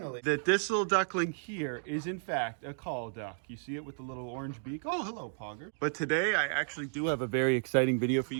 that this little duckling here is, in fact, a call duck. You see it with the little orange beak? Oh, hello, Pogger. But today, I actually do have a very exciting video for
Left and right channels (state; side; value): silent; left; digital silence